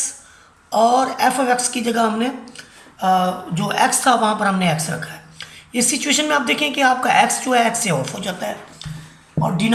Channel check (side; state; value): both; identical; correlation 1.00